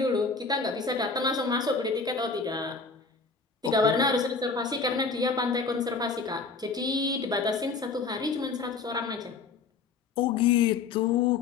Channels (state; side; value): quieter; right; 4.6 dB